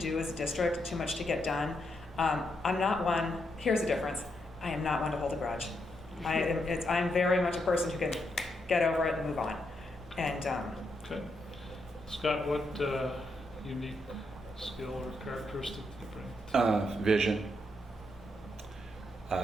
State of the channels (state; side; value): normal; both; correlation 0.80